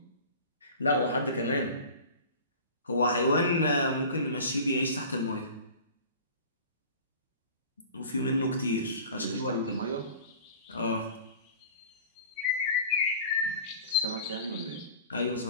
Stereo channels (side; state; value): both; inverted; correlation -0.40